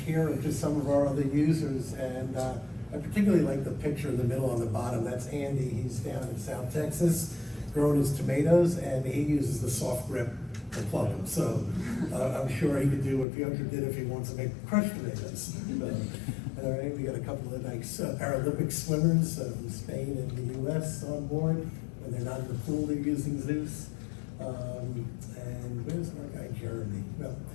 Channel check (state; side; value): drops out; right; at 13.2 s